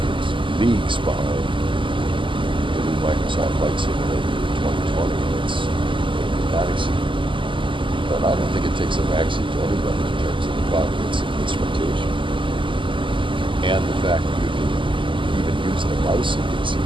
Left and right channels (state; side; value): late; left; 0.25 ms